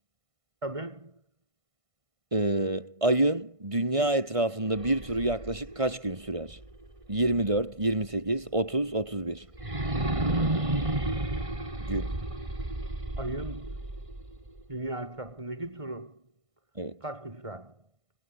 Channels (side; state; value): left; late; 1.5 ms